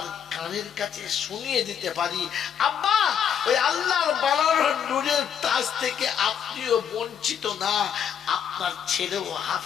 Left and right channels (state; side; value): quieter; right; 8.3 dB